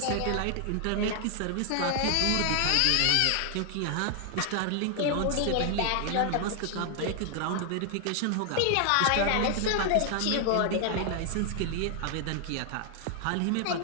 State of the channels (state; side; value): different; both; correlation 0.00